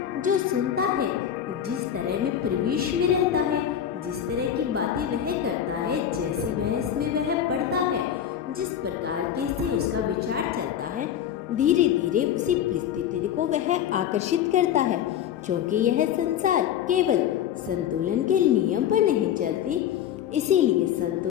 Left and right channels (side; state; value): right; quieter; 9.7 dB